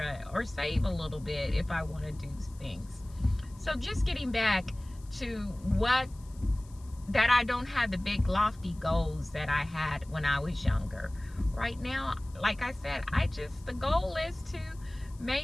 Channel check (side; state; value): left; noise; hiss, 26 dB below the sound